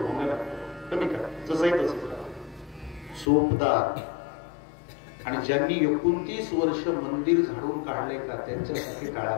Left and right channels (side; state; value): right; drops out; at 3.2 s